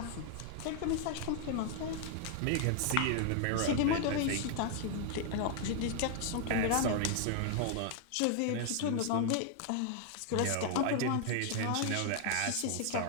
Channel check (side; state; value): both; different; correlation 0.00